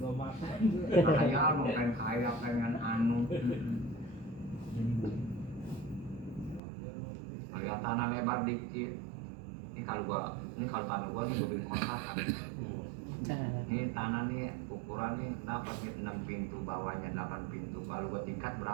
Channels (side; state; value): left; drops out; at 6.6 s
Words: Dua mata. Ngahayal mau pengen kaya, pengen anu. Limbo. Lihat tanah lebar dikit. Ini kalau tanah gua nih bikin kontrakan. Ini tanah nih ukuran nih dapat 6 pintu, bawahnya 8 pintu. Kalau gua tingkat